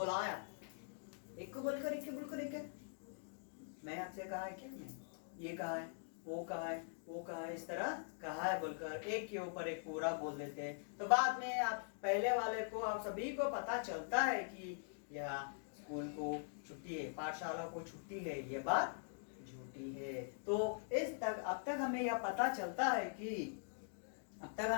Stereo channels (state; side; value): silent; right; digital silence